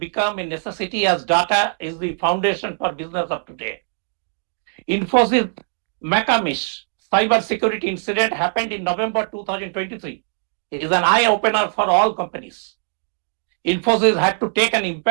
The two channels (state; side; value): silent; left; digital silence